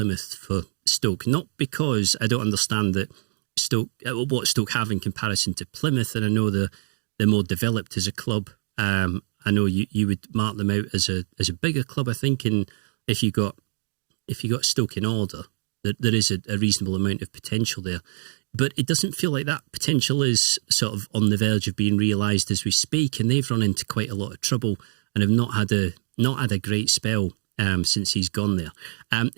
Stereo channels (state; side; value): silent; left; digital silence